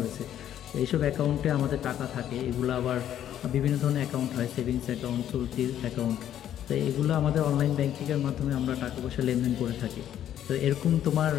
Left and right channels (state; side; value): quieter; right; 10.9 dB